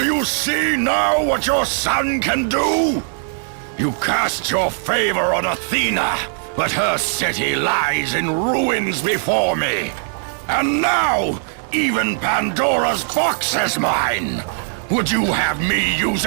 you see now what your son can do? You cast your favor on Athena, but her city lies in ruins before me. And now, even Pandora's box is mine! Would you have me use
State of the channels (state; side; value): silent; left; 66 dB below the other